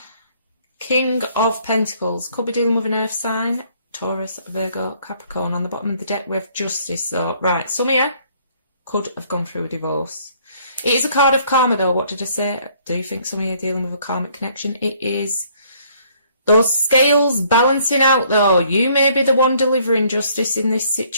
King of Pentacles, could be dealing with an earth sign, Taurus, Virgo, Capricorn. On the bottom of the deck we have Justice. So, right, some of you could have gone through a divorce. It is a card of karma though. What did I say? Do you think some of you are dealing with a karmic connection? It is those scales balancing out though. You may be the one delivering justice in this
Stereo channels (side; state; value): both; inverted; correlation -0.63